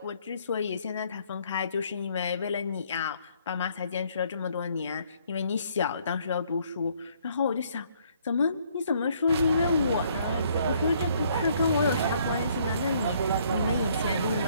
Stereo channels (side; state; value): both; inverted; correlation -0.65